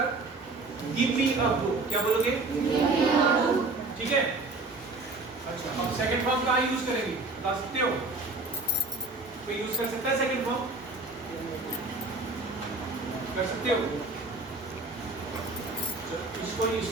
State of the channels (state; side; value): quieter; left; 3.4 dB